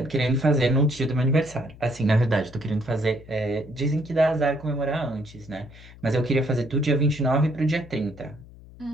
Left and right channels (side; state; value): left; noise; hum, 20 dB below the sound